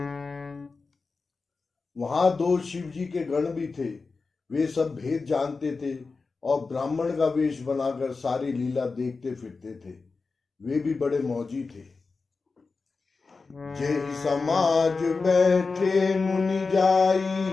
वहां दो शिव जी के गण भी थे। वे सब भेद जानते थे और ब्राह्मण का वेश बनाकर सारी लीला देखते फिरते थे। वे भी बड़े मौजी थे। जेहि समाज बैठे मुनि जाई,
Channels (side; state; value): right; quieter; 4.3 dB